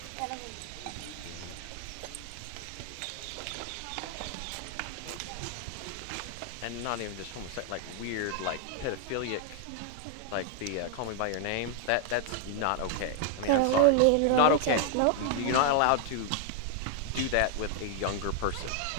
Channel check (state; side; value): different; both; correlation 0.00